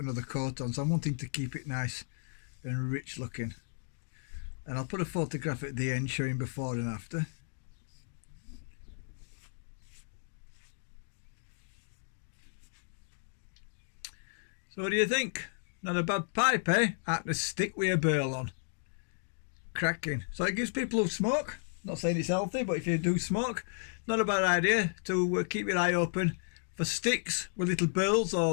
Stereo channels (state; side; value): silent; right; digital silence